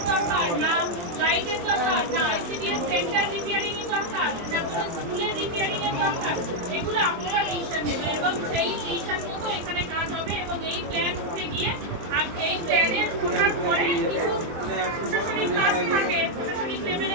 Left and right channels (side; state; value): left; late; 23 ms